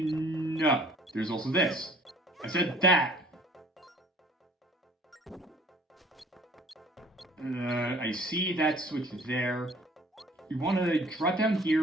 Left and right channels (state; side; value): normal; both; correlation 0.54